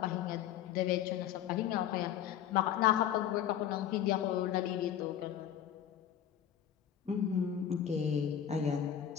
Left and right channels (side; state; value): right; quieter; 10.0 dB